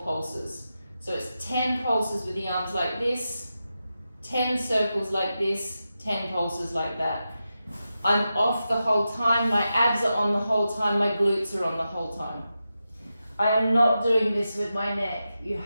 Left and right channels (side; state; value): both; inverted; correlation -0.90